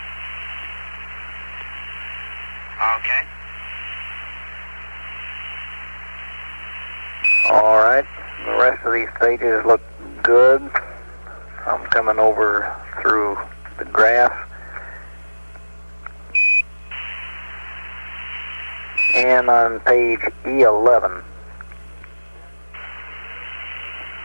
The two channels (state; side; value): inverted; both; correlation -1.00